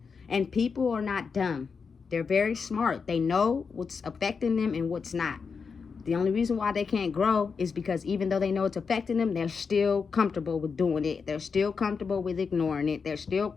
And people are not dumb. They're very smart. They know what's affecting them and what's not. The only reason why they can't grow is because even though they know it's affecting them, they're still comfortable with doing it. They're still comfortable with ignoring it. They're still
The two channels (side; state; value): right; quieter; 5.5 dB